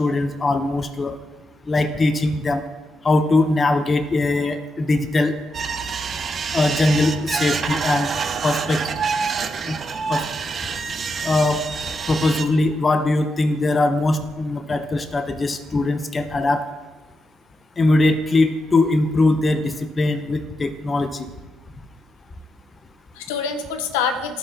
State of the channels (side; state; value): both; normal; correlation 0.85